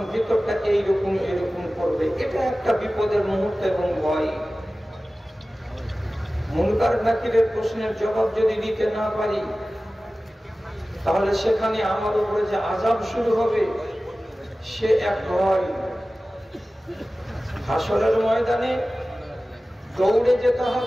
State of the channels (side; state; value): both; normal; correlation 0.96